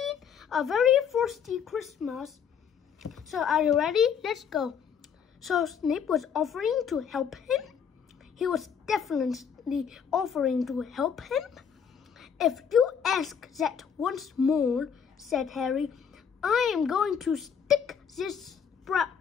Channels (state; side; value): quieter; right; 7.4 dB